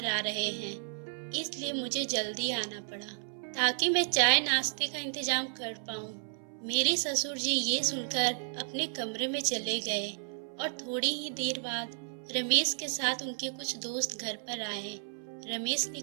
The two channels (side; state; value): left; silent; 56 dB below the other